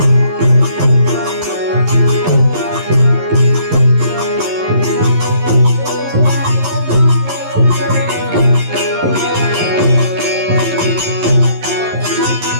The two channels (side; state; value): left; late; 11 ms